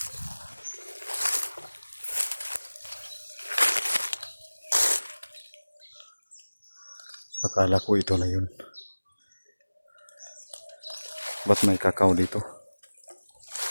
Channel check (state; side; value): inverted; both; correlation -1.00